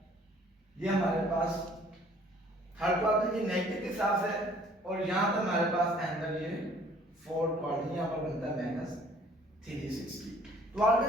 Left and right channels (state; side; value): normal; both; correlation 0.56